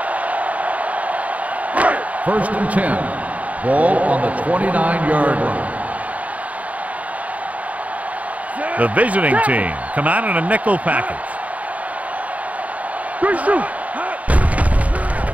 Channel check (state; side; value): late; left; 0.070 ms